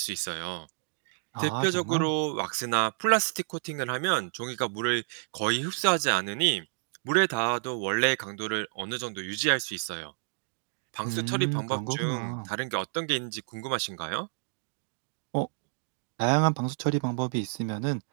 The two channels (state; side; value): silent; left; digital silence